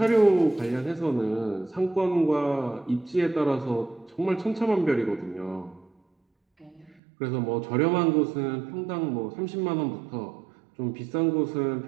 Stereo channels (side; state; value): left; drops out; at 7.0 s